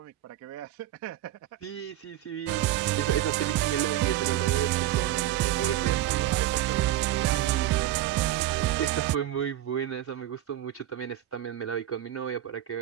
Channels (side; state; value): left; quieter; 13.4 dB